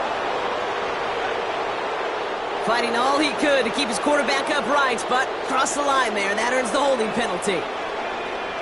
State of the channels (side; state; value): both; identical; correlation 1.00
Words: Fighting all he could to keep his quarterback upright, but crossed the line there. That earns the holding penalty.